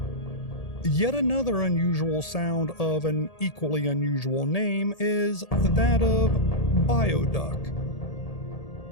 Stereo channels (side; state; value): right; late; 1.8 ms